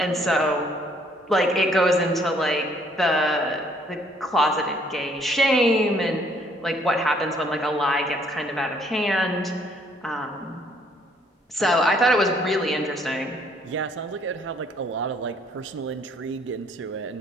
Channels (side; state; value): both; normal; correlation 0.64